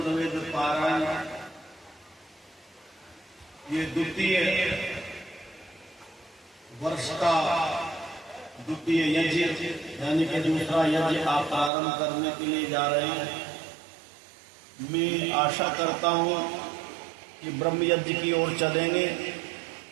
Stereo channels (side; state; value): left; drops out; at 11.7 s